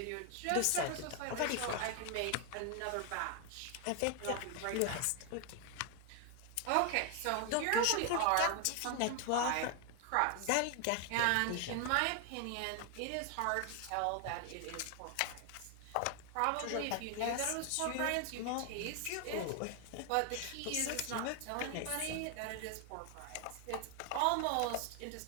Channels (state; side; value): different; both; correlation 0.00